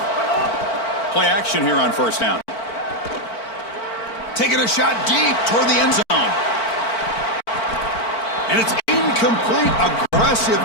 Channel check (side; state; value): right; late; 4.5 ms